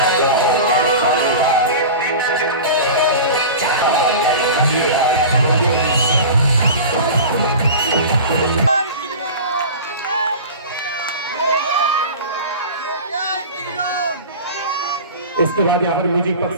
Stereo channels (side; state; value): both; inverted; correlation -0.33